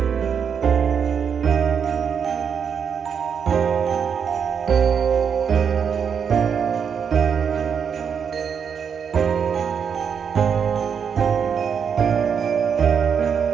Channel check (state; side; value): quieter; left; 7.1 dB